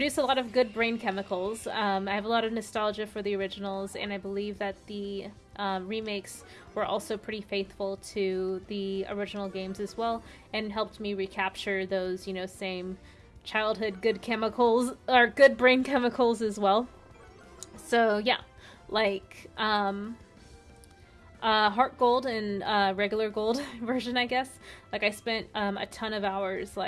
a lot of good brain chemicals. I have a lot of nostalgia for the originals, and I believe that the remakes were also pretty faithful to the original games as well, and helped me recapture those, same childhood good chemicals, or good brain chemicals as well. So yeah, like Heart Gold and regular Gold version, I guess. Like I spent a ton of hours,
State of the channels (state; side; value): identical; both; correlation 1.00